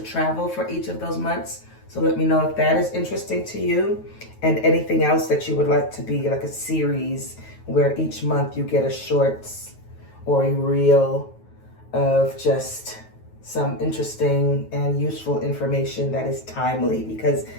travel for each of those months. So let me know if that is interesting to you, and anything else that you would like to be like a series where each month you get a shorts or a reel of just some interesting and useful information that is timely, because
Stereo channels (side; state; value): right; late; 9.3 ms